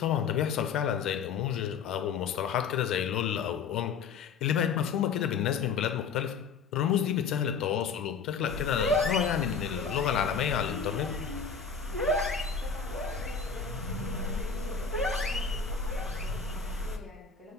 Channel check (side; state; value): right; quieter; 6.0 dB